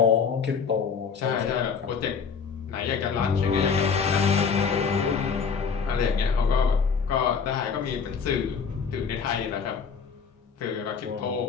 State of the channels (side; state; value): right; quieter; 6.0 dB